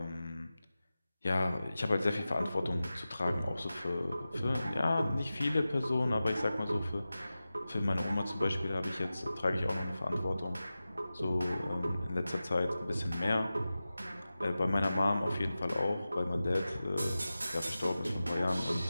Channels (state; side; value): inverted; both; correlation -0.95